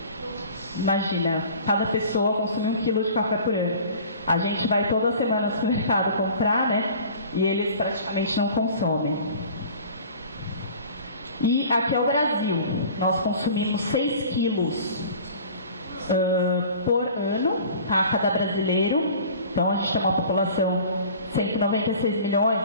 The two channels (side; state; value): both; inverted; correlation -0.44